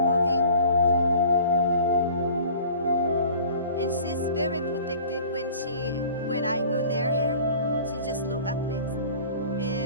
moving. And she's very protected when I go near her. She just look at me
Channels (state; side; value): inverted; both; correlation -0.46